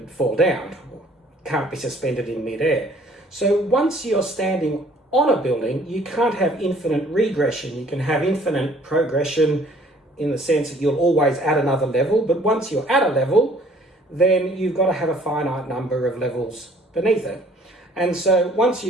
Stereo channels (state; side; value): normal; both; correlation 0.57